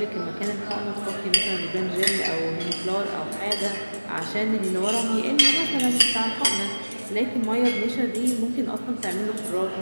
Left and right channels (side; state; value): both; inverted; correlation -1.00